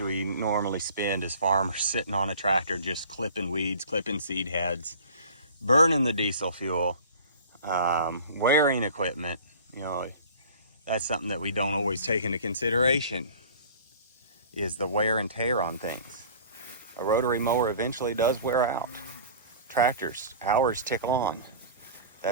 we normally spend as farmers sitting on a tractor just clipping weeds, clipping seed heads, burning the diesel fuel, wearing equipment. You know, that's something that we don't always take into consideration, is the wear and tear on things. A rotary mower eventually does wear out. Tractors, hours tick on.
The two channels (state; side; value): inverted; both; correlation -0.43